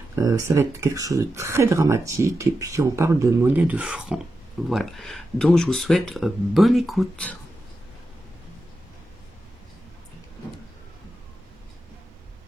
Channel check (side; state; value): both; normal; correlation 0.89